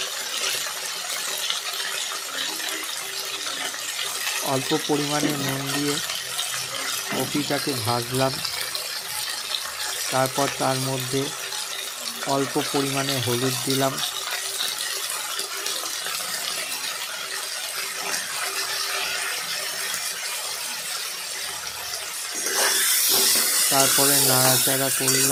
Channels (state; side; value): identical; both; correlation 1.00